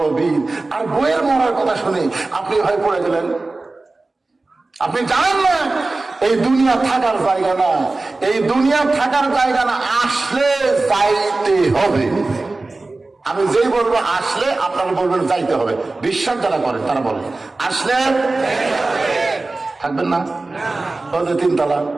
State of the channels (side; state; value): left; quieter; 3.3 dB